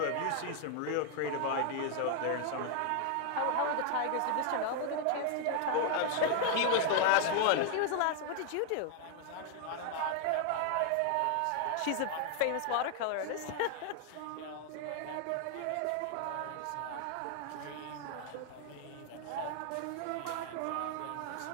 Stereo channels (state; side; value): different; both; correlation 0.00